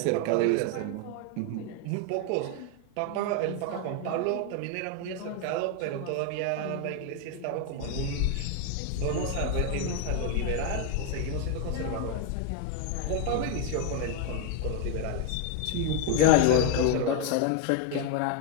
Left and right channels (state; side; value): different; both; correlation 0.00